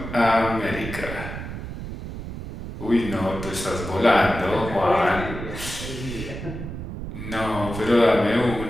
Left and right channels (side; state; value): right; noise; rumble, 8 dB below the sound